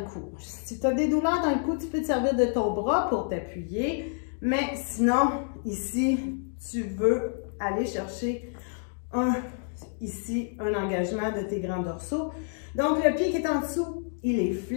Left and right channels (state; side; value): silent; right; 59 dB below the other